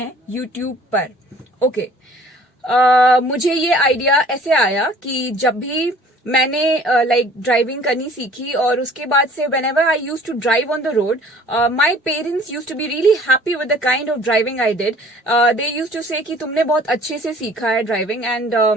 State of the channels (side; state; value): both; normal; correlation 0.52